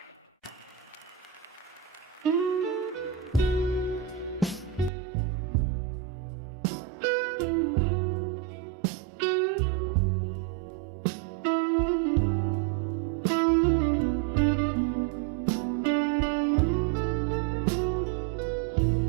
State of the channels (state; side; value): drops out; left; at 4.9 s